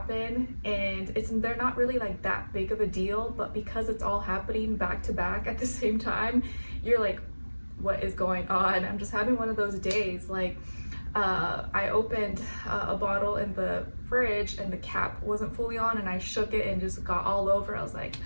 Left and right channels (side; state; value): both; inverted; correlation -1.00